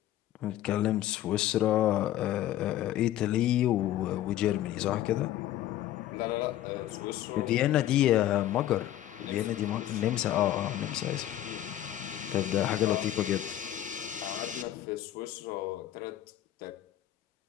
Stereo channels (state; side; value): quieter; right; 12.9 dB